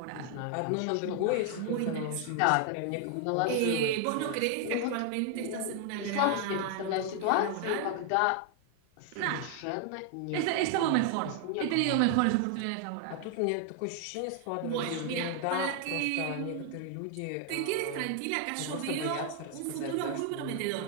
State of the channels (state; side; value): different; both; correlation 0.00